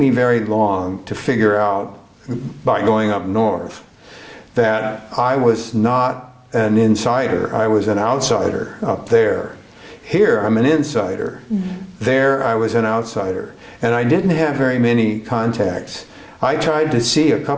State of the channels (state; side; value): identical; both; correlation 1.00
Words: very long to figure out, by going up north, that I was not an insider. I was an outsider up there. Here, I'm an insider. There, I was an outsider. And I didn't have very many contacts. I tried to see a